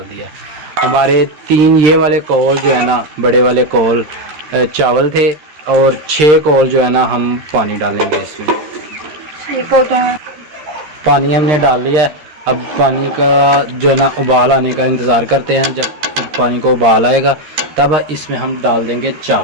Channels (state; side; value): late; left; 13 ms